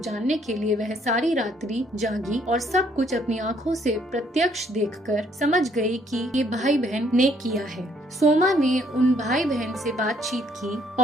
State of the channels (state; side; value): normal; both; correlation 0.67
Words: के लिए वह सारी रात्रि जागी और सब कुछ अपनी आंखों से प्रत्यक्ष देखकर समझ गई कि ये भाई बहन ने किया है। सोमा ने उन भाई बहन से बातचीत की